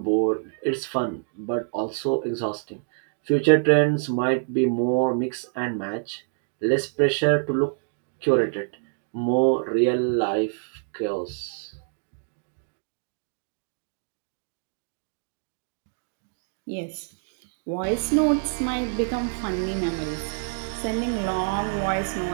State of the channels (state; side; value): silent; left; digital silence